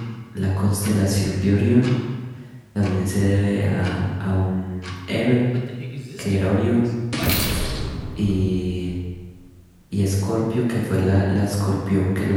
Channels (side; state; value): both; identical; correlation 1.00